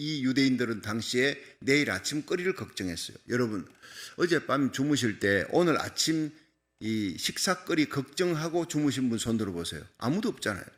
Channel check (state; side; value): identical; both; correlation 1.00